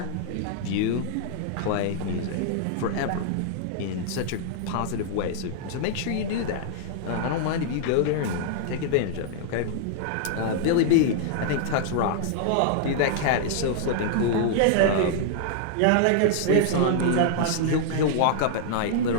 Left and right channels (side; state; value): both; different; correlation -0.01